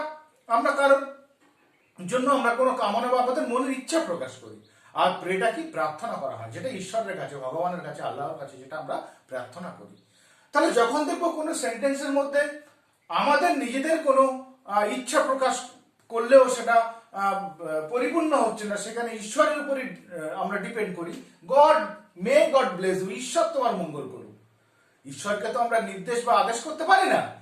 আমরা কারোর জন্য আমরা কোনো কামনা বা আমাদের মনের ইচ্ছা প্রকাশ করি। আর প্রেটা কি? প্রার্থনা করা হয়, যেটা ঈশ্বরের কাছে, ভগবানের কাছে, আল্লাহর কাছে, যেটা আমরা প্রার্থনা করি। তাহলে যখন দেখবো কোনো সেন্টেন্সের মধ্যে আমাদের নিজেদের কোনো ইচ্ছা প্রকাশ করলেও সেটা পরিপূর্ণ হচ্ছে না, সেখানে ঈশ্বরের উপরই আমরা ডিপেন্ড করি। God may God bless you, ঈশ্বর তোমার মঙ্গল করুক। ঈশ্বরকে তো আমরা নির্দেশ বা আদেশ করতে পারি না।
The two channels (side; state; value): both; identical; correlation 1.00